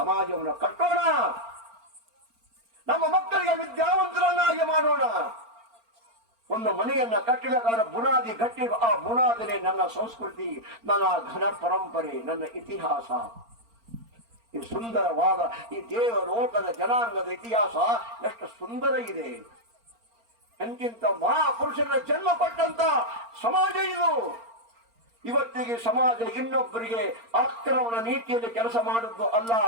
ಕಟ್ಟೋಣ. ನಮ್ಮ ಮಕ್ಕಳಿಗೆ ವಿದ್ಯಾವಂತರನ್ನಾಗಿ ಮಾಡೋಣ. ಒಂದು ಮನೆಯನ್ನ ಕಟ್ಟಬೇಕಾದ್ರೆ ಬುನಾದಿ ಗಟ್ಟಿ, ಆ ಬುನಾದಿನೇ ನನ್ನ ಸಂಸ್ಕೃತಿ, ನನ್ನ ಘನ ಪರಂಪರೆ, ನನ್ನ ಇತಿಹಾಸ. ಈ ಸುಂದರವಾದ ಈ ದೇವಲೋಕದ ಜನಾಂಗದ ಇತಿಹಾಸ ಎಷ್ಟು ಸುಂದರ ಇದೆ. ಎಂತಿಂತ ಮಹಾಪುರುಷರ ಜನ್ಮ ಪಟ್ಟಂತ ಸಮಾಜ ಇದು. ಇವತ್ತಿಗೆ ಸಮಾಜ ಇನ್ನೊಬ್ಬರಿಗೆ ಆಕ್ರಮಣ ನೀತಿಯಲ್ಲಿ ಕೆಲಸ ಮಾಡುವುದು ಅಲ್ಲ.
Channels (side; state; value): left; late; 4.4 ms